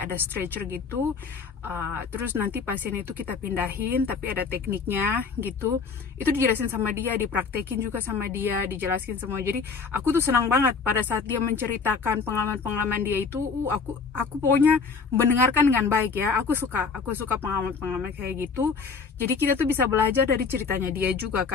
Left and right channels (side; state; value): right; quieter; 5.2 dB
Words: ada stretcher gitu, terus nanti pasien itu kita pindahin, tapi ada tekniknya gitu. Itu dijelasin sama dia, dipraktekin juga sama dia, dijelasin semua. Jadi aku tuh senang banget pada saat dia menceritakan pengalaman-pengalaman dia itu. Aku pokoknya mendengarkan dengan baik ya. Aku suka pengalaman-pengalaman kayak gitu. Jadi kita tuh bisa belajar dari ceritanya dia juga